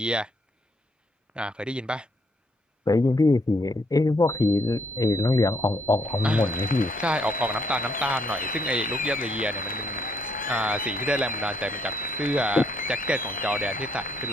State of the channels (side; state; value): both; normal; correlation 0.72